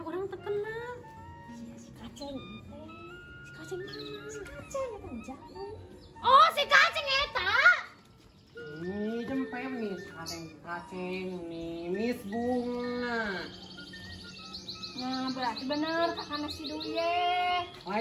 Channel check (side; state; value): both; identical; correlation 1.00